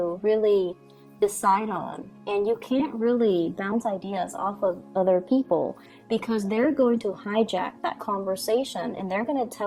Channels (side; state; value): both; identical; correlation 1.00